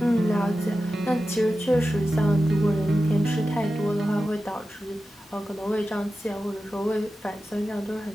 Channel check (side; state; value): both; normal; correlation 0.93